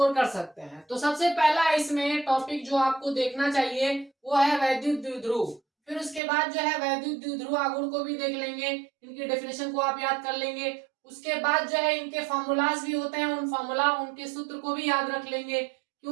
कर सकते हैं। तो सबसे पहला इसमें टॉपिक जो आपको देखना चाहिए वो है वैद्युत द्विध्रुव। फिर उसके बाद जो है वैद्युत द्विध्रुव आघूर्ण को भी देख लेंगे, इनकी डेफिनेशन को आप याद कर लेंगे। उसके बाद जो है इनके फॉर्मूलाज भी होते हैं, उन फॉर्मूला उनके सूत्र को भी याद रख लेंगे,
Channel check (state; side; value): drops out; left; at 6.2 s